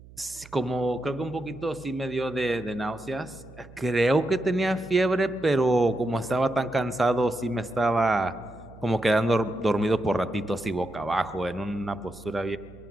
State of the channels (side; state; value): right; noise; hum, 21 dB below the sound